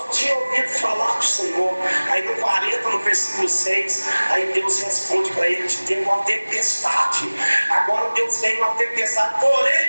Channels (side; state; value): both; inverted; correlation -1.00